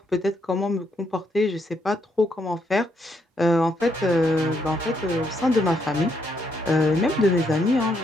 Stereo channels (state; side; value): normal; both; correlation 0.75